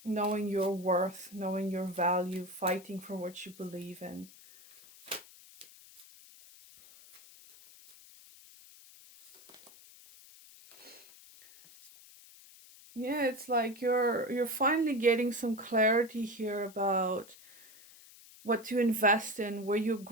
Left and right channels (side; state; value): left; noise; hiss, 22 dB below the sound